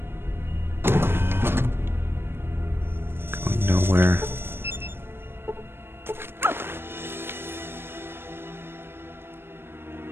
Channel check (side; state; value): left; late; 0.11 ms